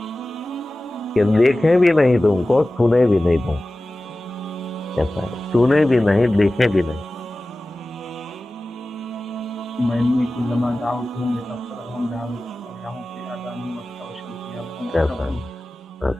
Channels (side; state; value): both; normal; correlation 0.96